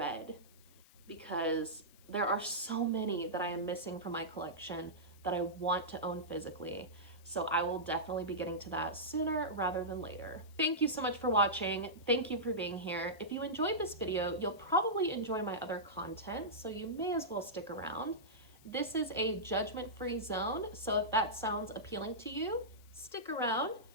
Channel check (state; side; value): noise; left; hiss, 26 dB below the sound